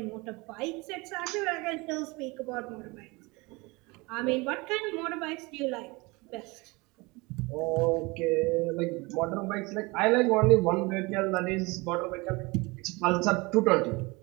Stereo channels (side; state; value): left; quieter; 25.2 dB